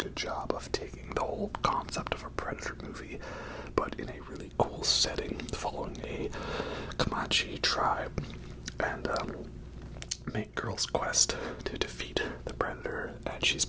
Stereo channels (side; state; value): both; identical; correlation 1.00